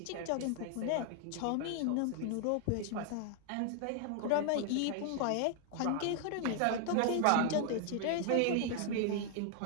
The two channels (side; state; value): both; different; correlation 0.00